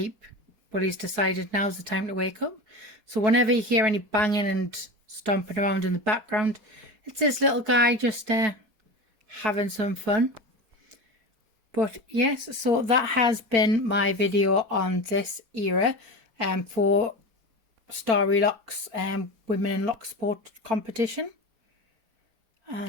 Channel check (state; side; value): late; left; 4.4 ms